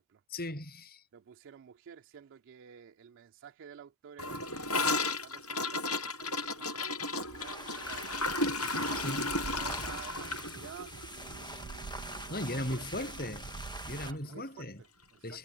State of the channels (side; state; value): both; normal; correlation 0.18